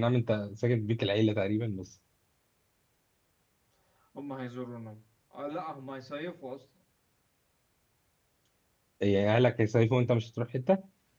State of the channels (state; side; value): identical; both; correlation 1.00